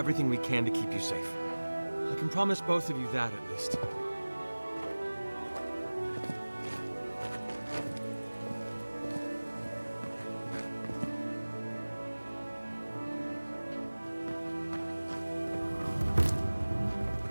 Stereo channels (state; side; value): inverted; both; correlation -1.00